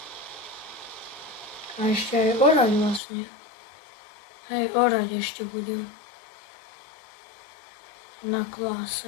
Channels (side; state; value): right; drops out; at 3.0 s